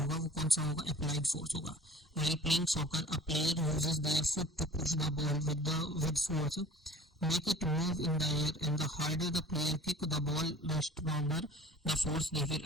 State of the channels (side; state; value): both; normal; correlation 0.44